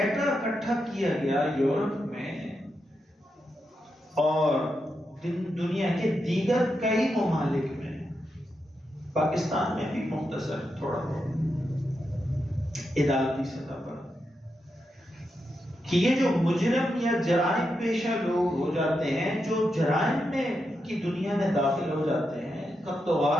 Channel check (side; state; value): both; normal; correlation 0.86